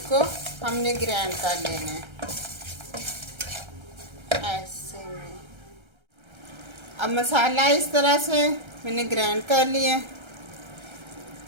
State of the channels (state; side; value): late; left; 1.3 ms